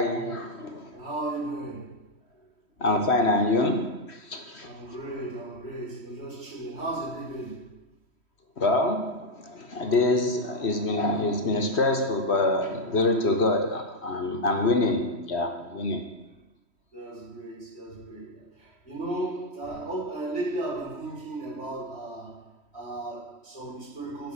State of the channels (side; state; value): right; late; 3.1 ms